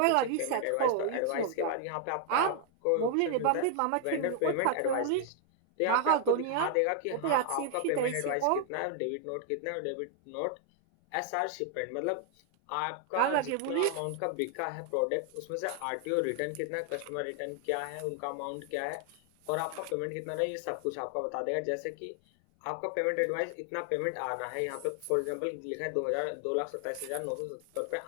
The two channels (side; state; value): both; different; correlation 0.00